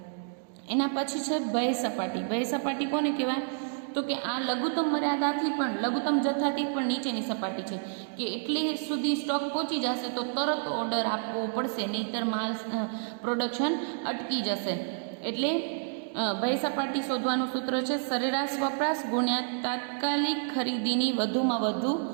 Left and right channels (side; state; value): left; silent; digital silence